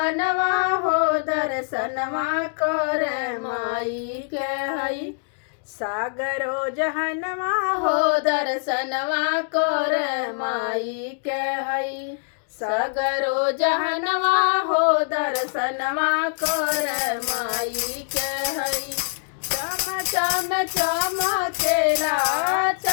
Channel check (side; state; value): right; silent; digital silence